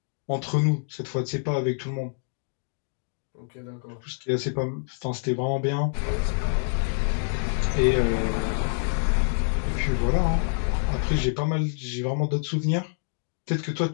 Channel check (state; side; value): silent; right; digital silence